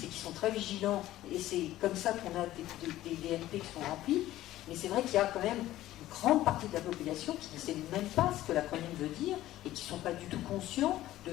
et qui sont très vigilants. Et c'est comme ça qu'on a des DMP qui sont remplis. Mais c'est vrai qu'il y a quand même une grande partie de la population qui ne sait même pas ce que l'acronyme veut dire et qui ne sont pas du tout conscients de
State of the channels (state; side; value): quieter; right; 14.8 dB